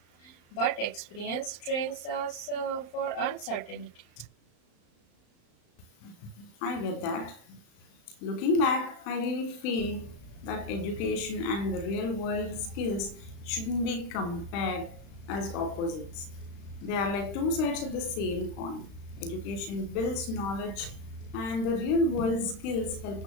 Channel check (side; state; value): right; late; 35 ms